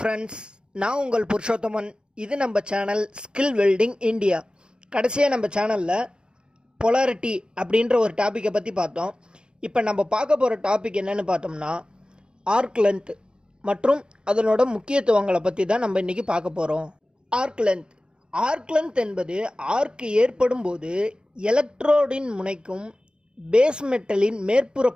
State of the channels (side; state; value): left; late; 0.050 ms